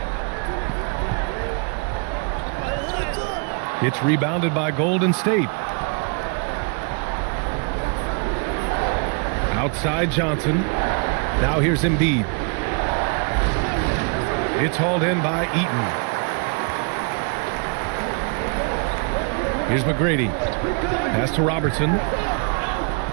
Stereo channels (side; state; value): left; quieter; 37.2 dB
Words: It's rebounded by Golden State. Outside Johnson. Now here's Embiid. It's hauled in by Eaton. Here's McGrady. Pass to Robertson.